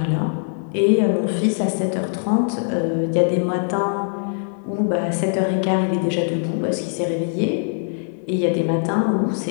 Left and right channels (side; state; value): right; silent; 58 dB below the other